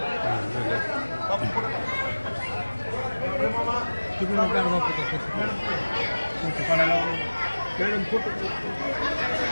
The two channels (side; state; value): both; inverted; correlation -1.00